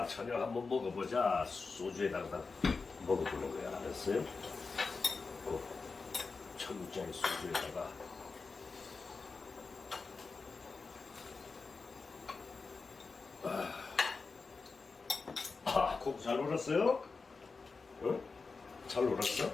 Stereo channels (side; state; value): right; quieter; 4.4 dB